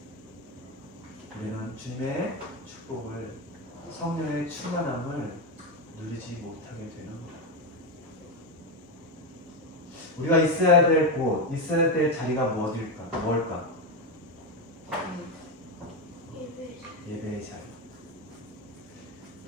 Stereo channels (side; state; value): both; normal; correlation 0.11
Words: 우리는 주님의 축복을, 성령의 충만함을 누리지 못하게 되는 거예요. 우리가 있어야 될 곳, 있어야 될 자리가 뭘까? 예배의 자리.